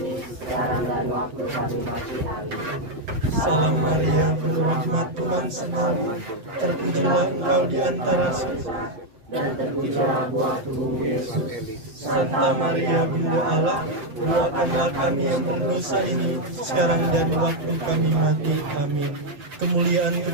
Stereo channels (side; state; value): left; late; 7.7 ms